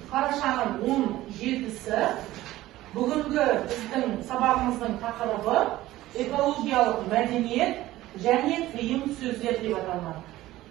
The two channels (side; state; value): left; quieter; 16.1 dB